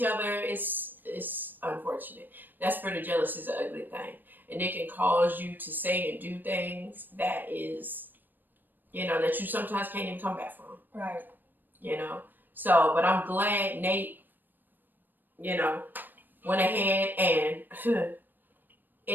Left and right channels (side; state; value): left; late; 0.091 ms